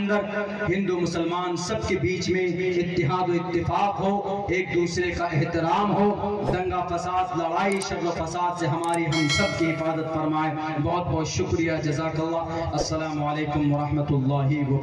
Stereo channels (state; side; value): identical; both; correlation 1.00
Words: ہندو مسلمان سب کے بیچ میں اتحاد و اتفاق ہو، ایک دوسرے کا احترام ہو، دنگا فساد، لڑائی، شر و فساد سے ہماری ہم سب کی حفاظت فرمائے۔ بہت بہت شکریہ، جزاک اللہ۔ السلام علیکم ورحمۃ اللہ